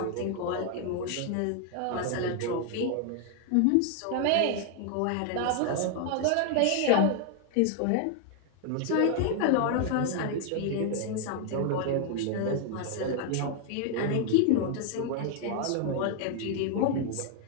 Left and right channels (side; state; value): both; different; correlation 0.00